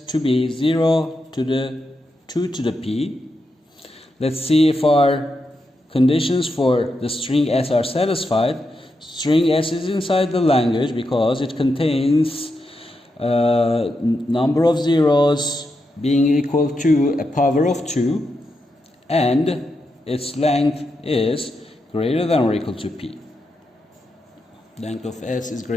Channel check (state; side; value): normal; both; correlation 0.85